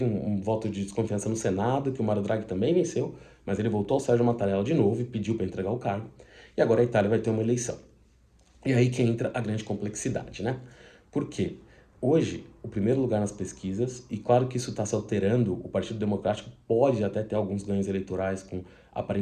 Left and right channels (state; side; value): identical; both; correlation 1.00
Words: um voto de desconfiança no Senado, que o Mário Draghi também venceu, mas ele voltou ao Sérgio Mattarella de novo e pediu para entregar o cargo. E agora a Itália vai ter uma eleição. E aí que entra a grande complexidade, né? Por quê? Hoje, o primeiro lugar nas pesquisas, e claro que isso está se alterando, o Partido Democrático pode até ter alguns ganhos eleitorais,